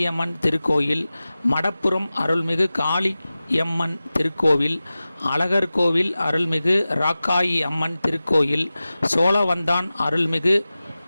திருக்கோயில், மடப்புரம் அருள்மிகு காளியம்மன் திருக்கோவில், அழகர்கோவில் அருள்மிகு ராக்காயி அம்மன் திருக்கோயில், சோழவந்தான் அருள்மிகு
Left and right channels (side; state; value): both; inverted; correlation -0.96